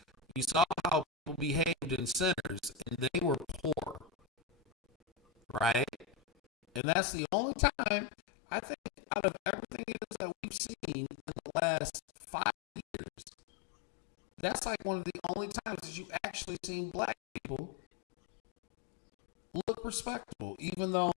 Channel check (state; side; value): drops out; right; at 6.8 s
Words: you saw how people behaved in Sinners and they were poor, right? And that's the only time I think out of everything it is that we've seen in the last 5 years, that's like one of the only times that you actually seen black people look respectable, even though